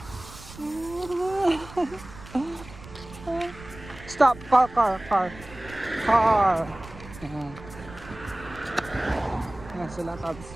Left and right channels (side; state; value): right; noise; rumble, 17 dB below the sound